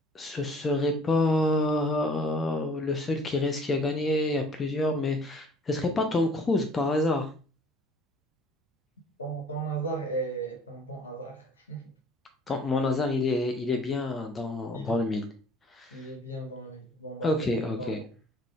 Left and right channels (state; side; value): normal; both; correlation 0.53